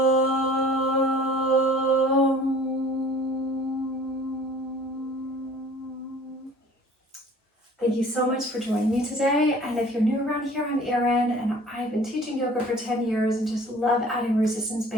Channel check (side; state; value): both; normal; correlation 0.49